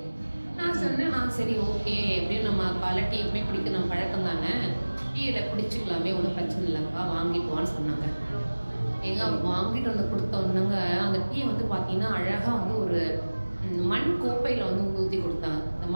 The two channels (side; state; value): both; inverted; correlation -1.00